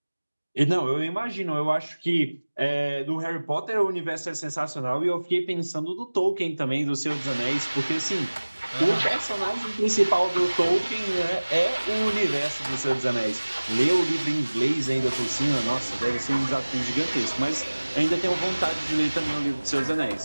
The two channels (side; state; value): both; inverted; correlation -1.00